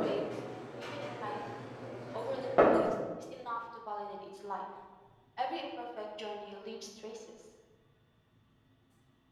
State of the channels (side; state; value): both; identical; correlation 1.00